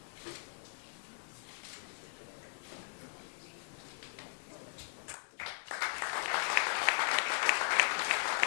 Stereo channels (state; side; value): silent; right; digital silence